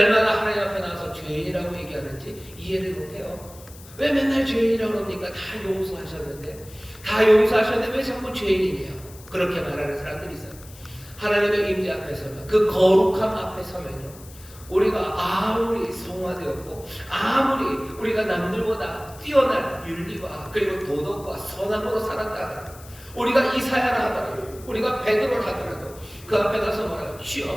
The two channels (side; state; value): left; noise; hiss, 20 dB below the sound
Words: 하나님 앞에 나와서 죄인이라고 얘기하는지 이해를 못해요. 왜 맨날 죄인이라고 그럽니까? 다 용서하셨는데 왜 자꾸 죄인이에요? 그렇게 말하는 사람들이 있어요. 하나님의 임재 앞에 서면, 그 거룩함 앞에 서면요, 우리가 아무리 성화되었고 아무리 우리가 남들보다 뛰어난 윤리와 그리고 도덕과 선함으로 살았다, 우리가 이사야라 하더라도, 우리가 베드로라 하더라도 그 앞에 가서 뭐라고?